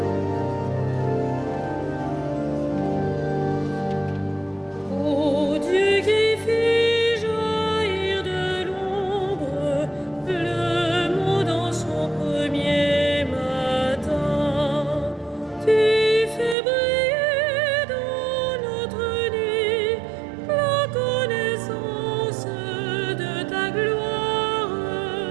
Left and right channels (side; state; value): left; drops out; at 16.6 s